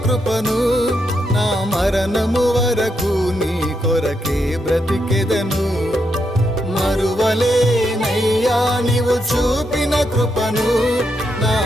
కృపను, నా మరణము వరకు నీ కొరకే బ్రతికెదను. మరువలేనయ్యా నీవు చూపిన కృపను, నా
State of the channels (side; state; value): both; normal; correlation 0.81